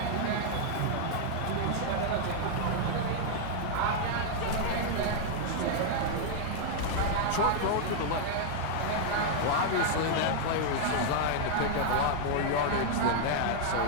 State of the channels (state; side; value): different; both; correlation 0.00